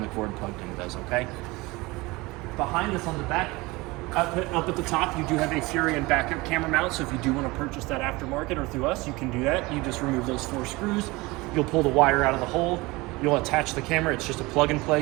cord plugged in does, okay? Behind us on the back, up at the top, you do have a Furion backup camera mount, so if you do wanna purchase that aftermarket or through us, you can do that. You just remove those 4 screws. You'll pull the wire out of the hole. You'll attach the camera. It's just a plug and play.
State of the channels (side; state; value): left; quieter; 22.7 dB